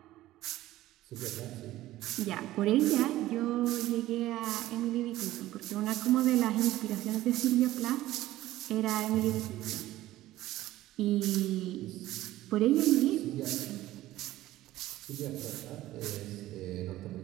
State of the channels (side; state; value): left; quieter; 15.4 dB